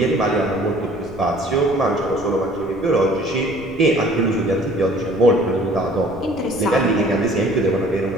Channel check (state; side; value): noise; left; rumble, 18 dB below the sound